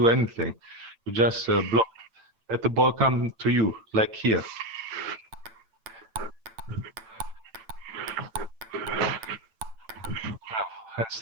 anything. You just block. Let the ball come to you, like here. And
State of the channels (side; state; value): left; late; 8.9 ms